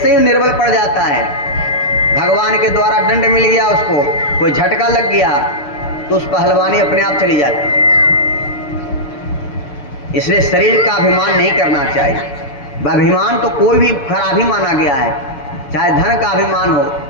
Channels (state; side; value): late; right; 6.7 ms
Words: ही निर्बल पड़ जाता है, भगवान के द्वारा दंड मिल गया, उसको कोई झटका लग गया, तो उस पहलवानी अपने आप चली जाती है। इसलिए शरीर का अभिमान नहीं करना चाहिए। अभिमान तो कोई भी खराब ही माना गया है, चाहे धन का अभिमान हो,